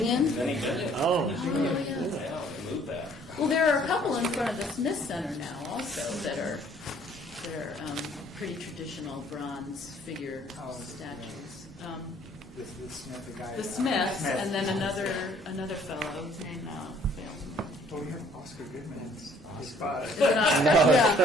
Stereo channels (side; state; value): both; normal; correlation 0.59